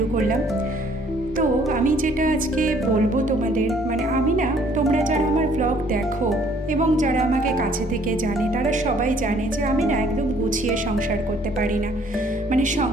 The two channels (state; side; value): normal; both; correlation 0.60